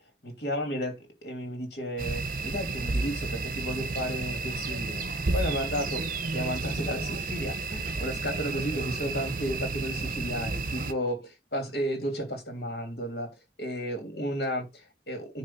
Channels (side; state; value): both; normal; correlation 0.44